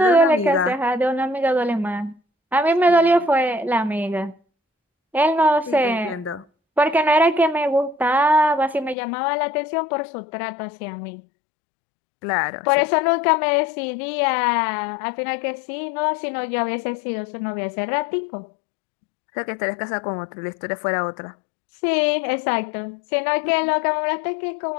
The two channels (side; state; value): right; drops out; at 9.0 s